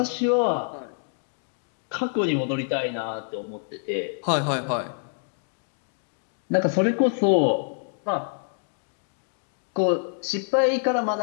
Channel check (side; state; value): right; silent; digital silence